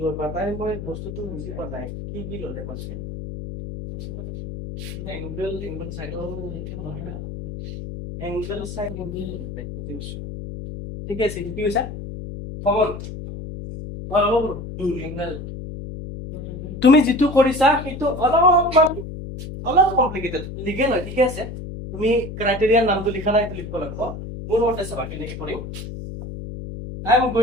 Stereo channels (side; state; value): left; noise; hum, 9 dB below the sound